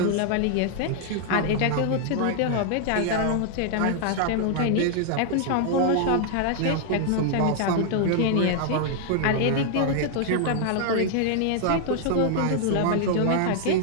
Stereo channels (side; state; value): both; different; correlation 0.00